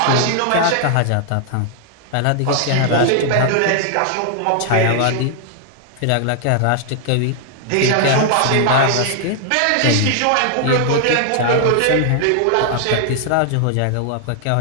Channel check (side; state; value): both; different; correlation 0.00